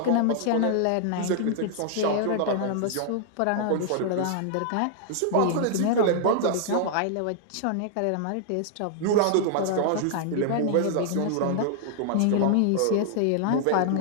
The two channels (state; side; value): different; both; correlation -0.01